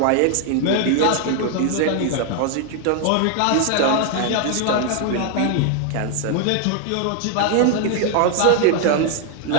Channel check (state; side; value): different; both; correlation 0.00